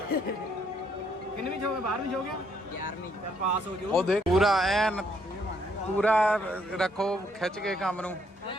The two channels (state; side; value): normal; both; correlation 0.70